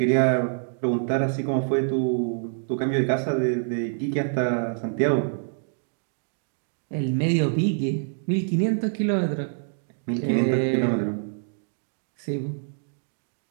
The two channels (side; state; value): left; silent; digital silence